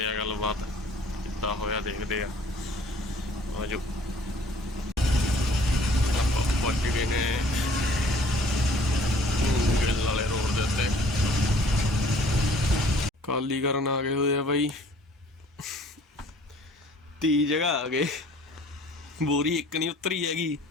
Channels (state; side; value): normal; both; correlation 0.55